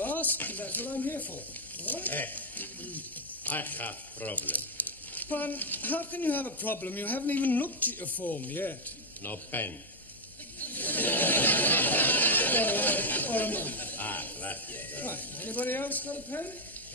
ask, because that's what I'm here for. All right? I have problem. But how can you have a problem? You haven't even looked at your form yet. No pen. Or a month. Gracias. Right. Anybody else got a pen?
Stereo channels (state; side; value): normal; both; correlation 0.01